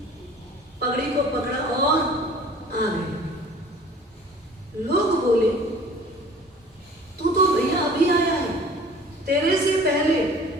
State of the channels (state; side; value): normal; both; correlation 0.48